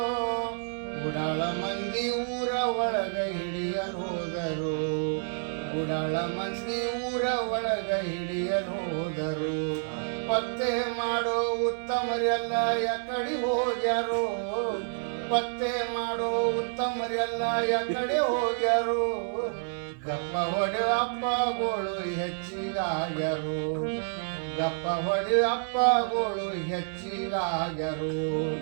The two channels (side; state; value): left; silent; 55 dB below the other